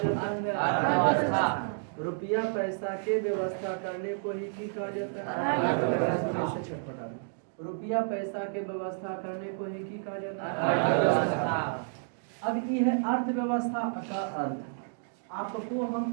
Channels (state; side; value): silent; left; digital silence